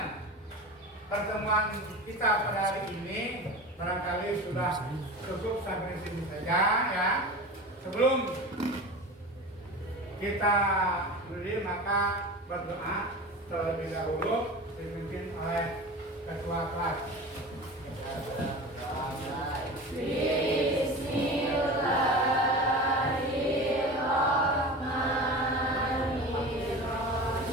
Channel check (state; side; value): normal; both; correlation 0.32